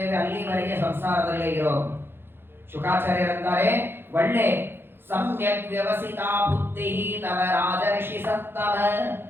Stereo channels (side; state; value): left; late; 0.10 ms